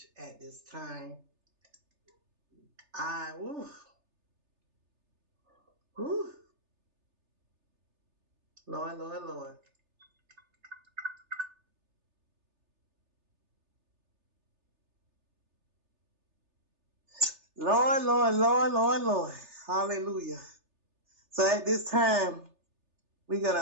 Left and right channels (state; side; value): late; left; 3.3 ms